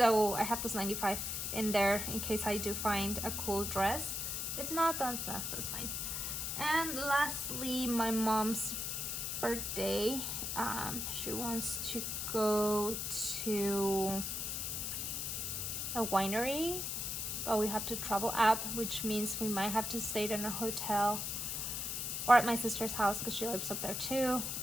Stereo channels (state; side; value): noise; left; hiss, 2 dB below the sound